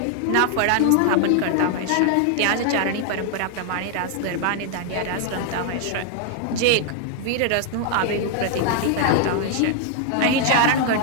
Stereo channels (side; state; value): both; different; correlation 0.00